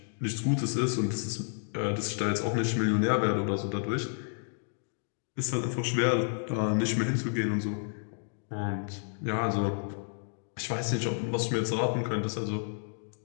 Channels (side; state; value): right; silent; digital silence